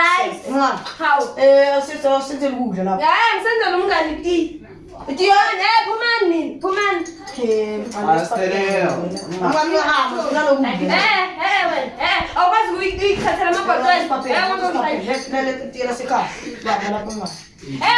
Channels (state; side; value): identical; both; correlation 1.00